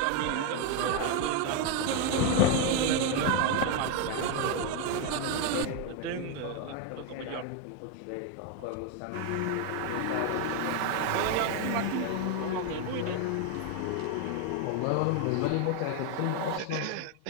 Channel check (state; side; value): different; both; correlation 0.01